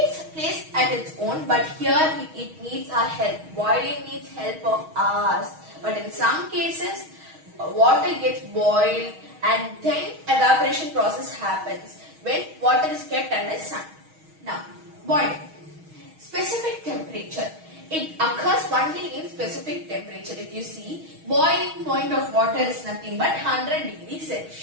place at its own, but here it needs our help. Boiling needs help of ours. But in some cases, water gets boiled and then evaporation process happens when water is kept under sun. Now, boiling. Specific temperature. It occurs only in specific temperature. If you see, boiling point of water is nothing but 100 degrees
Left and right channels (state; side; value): late; left; 6.3 ms